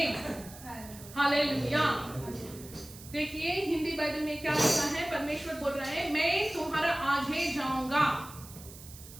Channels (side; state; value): right; noise; hiss, 17 dB below the sound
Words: Hallelujah. देखिए Hindi Bible में क्या लिखा है, परमेश्वर बोल रहे हैं मैं तुम्हारा आगे जाऊंगा.